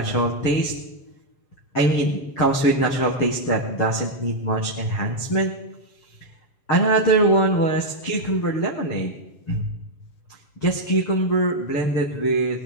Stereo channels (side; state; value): right; late; 7.3 ms